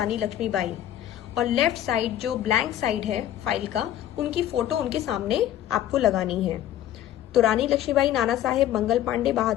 लक्ष्मीबाई, और लेफ्ट साइड जो ब्लैंक साइड है फाइल का, उनकी फोटो उनके सामने आपको लगानी है। तो रानी लक्ष्मीबाई, नाना साहेब, मंगल पांडे,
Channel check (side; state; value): right; quieter; 12.0 dB